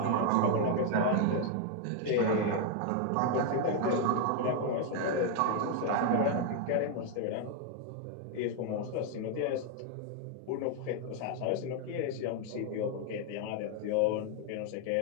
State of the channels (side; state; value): both; different; correlation 0.01